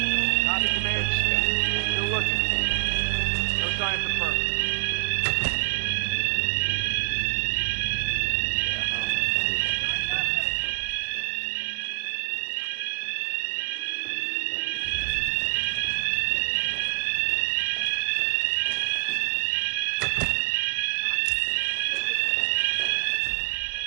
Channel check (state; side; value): silent; left; 61 dB below the other